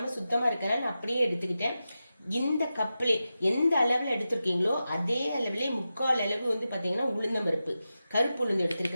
சுத்தமாக இருக்கனால நான் அப்படியே எடுத்துக்கிட்டேன். இந்த கப்பில் எந்த அளவில் எடுத்திருக்கீங்களோ அதே அளவிலே 3/4 அளவு பார்த்தீங்கன்னா உளுந்தம்பருப்பு, கருப்பு உளுந்து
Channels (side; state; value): both; inverted; correlation -0.92